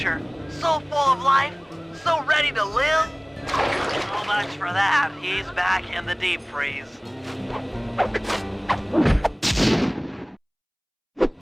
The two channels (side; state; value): both; identical; correlation 1.00